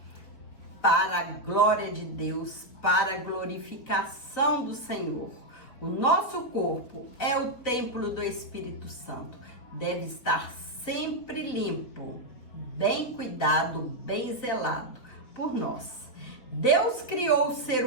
para a glória de Deus, para a glorificação do Senhor. O nosso corpo é o templo do Espírito Santo, deve estar sempre limpo, bem cuidado, bem zelado por nós. Deus criou o ser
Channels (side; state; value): right; late; 4.0 ms